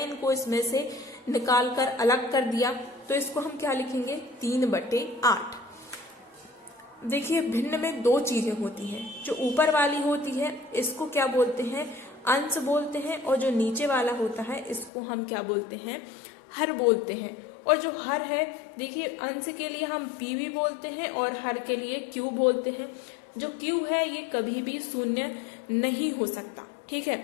इसमें से निकाल कर अलग कर दिया। तो इसको हम क्या लिखेंगे, 3/8। देखिए भिन्न में 2 चीजें होती हैं, जो ऊपर वाली होती है इसको क्या बोलते हैं, अंश बोलते हैं, और जो नीचे वाला होता है इसको हम क्या बोलते हैं, हर बोलते हैं। और जो हर है, देखिए अंश के लिए हम p भी बोलते हैं और हर के लिए q बोलते हैं। जो q है ये कभी भी शून्य नहीं हो सकता, ठीक है,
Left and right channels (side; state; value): right; drops out; at 14.9 s